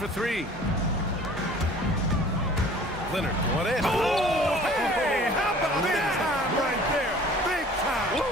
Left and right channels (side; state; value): both; normal; correlation 0.49